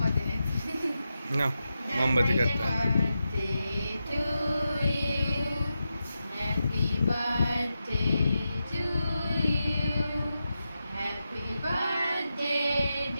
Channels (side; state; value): both; inverted; correlation -0.89